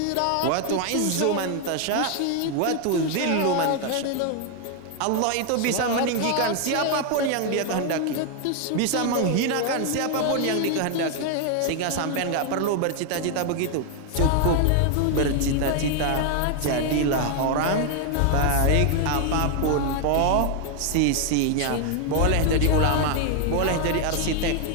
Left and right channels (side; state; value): both; different; correlation 0.00